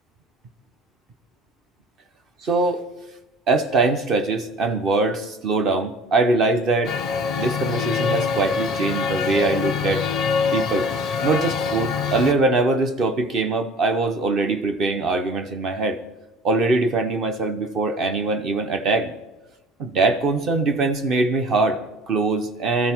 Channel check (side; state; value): both; normal; correlation 0.45